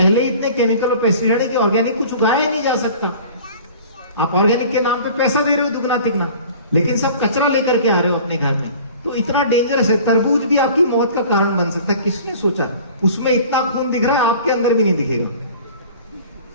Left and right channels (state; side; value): inverted; both; correlation -0.45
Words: ही इतने केमिकल और पेस्टिसाइड है कि ऑर्गेनिक कुछ उगाया ही नहीं जा सकता। आप ऑर्गेनिक के नाम पे पैसा दे रहे हो दुगना तिगना, लेकिन सब कचरा लेकर के आ रहे हो अपने घर में। तो इतना डेंजरस है। तरबूज भी आपकी मौत का कारण बन सकता है। किसने सोचा? उसमें इतना खून दिख रहा है, आपके अंदर भी नहीं दिखेगा।